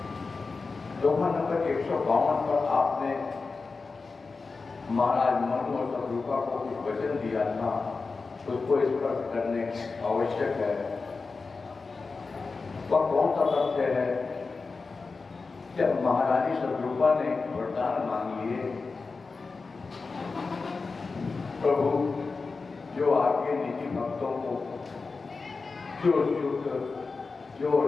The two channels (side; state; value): right; quieter; 4.3 dB